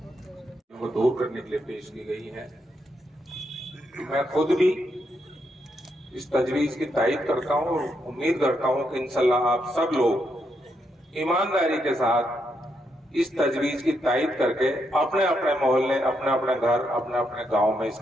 वो दूर करने के लिए पेश की गई है। मैं खुद भी इस तजवीज की तायद करता हूं और उम्मीद करता हूं कि इंशाल्लाह आप सब लोग ईमानदारी के साथ इस तजवीज की तायद करके अपने अपने मोहल्ले, अपने अपने घर, अपने अपने गांव में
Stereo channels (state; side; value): normal; both; correlation 0.79